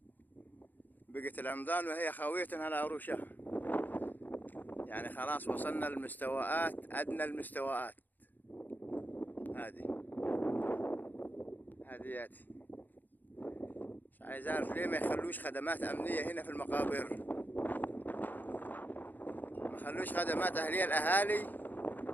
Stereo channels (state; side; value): late; right; 0.086 ms